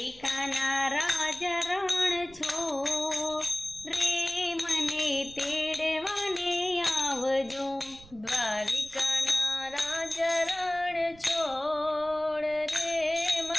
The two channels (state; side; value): noise; right; rumble, 23 dB below the sound